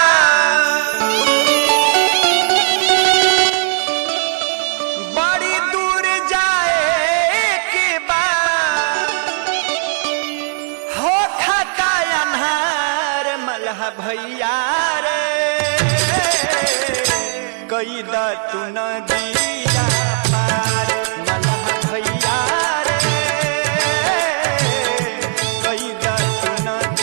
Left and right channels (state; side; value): silent; left; 68 dB below the other